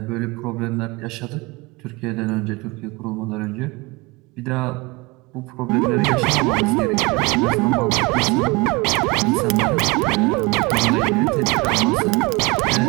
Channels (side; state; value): left; quieter; 24.9 dB